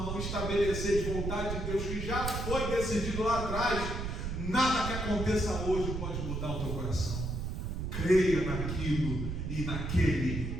estabelecer de vontade de Deus que já foi decidido lá atrás, nada que aconteça hoje pode mudar o teu coração. Creia naquilo e naquele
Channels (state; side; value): noise; right; rumble, 3 dB below the sound